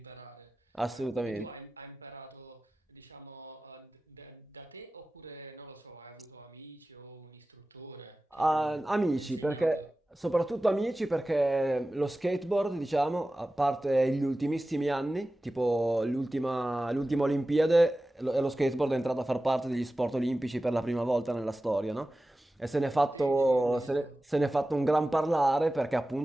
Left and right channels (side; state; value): both; normal; correlation 0.95